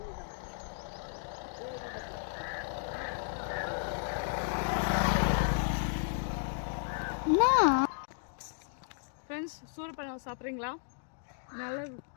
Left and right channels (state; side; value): silent; right; digital silence